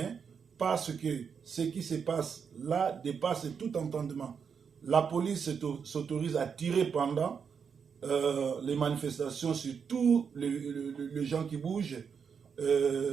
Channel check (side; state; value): left; quieter; 6.5 dB